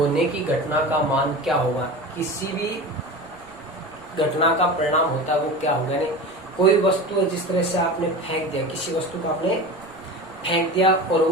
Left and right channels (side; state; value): right; noise; rumble, 27 dB below the sound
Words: की घटना का मान क्या होगा, किसी भी घटना का परिणाम होता है वो क्या होगा। यानी कोई वस्तु है, जिस तरह से आपने फेंक दिया, किसी वस्तु को आपने फेंक दिया और